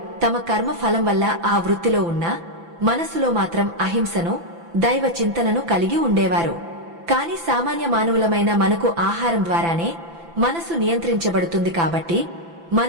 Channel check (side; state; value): left; late; 5.9 ms